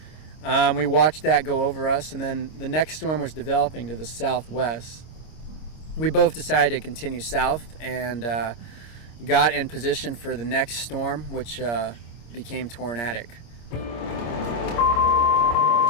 We watched that go over us, and then the next storm was developing to the southwest. We both decided to continue south and got in position for the next storm, which became tornadic.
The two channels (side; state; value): right; late; 26 ms